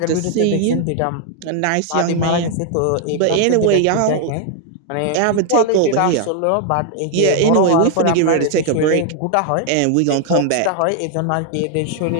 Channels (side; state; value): both; different; correlation 0.00